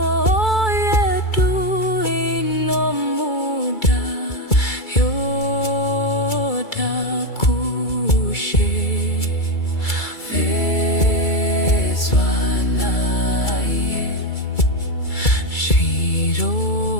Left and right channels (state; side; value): late; right; 2.3 ms